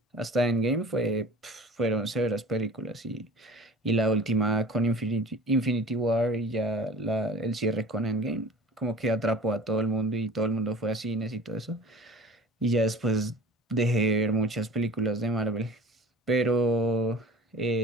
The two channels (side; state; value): both; normal; correlation 0.42